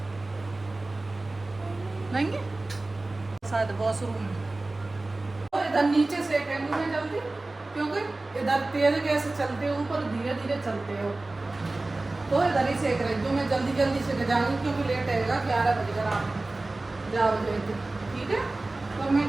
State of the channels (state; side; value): quieter; left; 3.0 dB